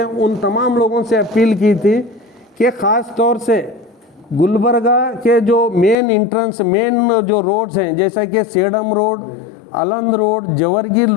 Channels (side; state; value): right; drops out; at 6.0 s